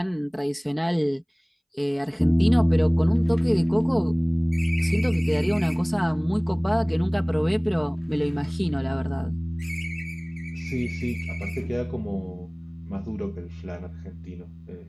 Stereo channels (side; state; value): both; identical; correlation 1.00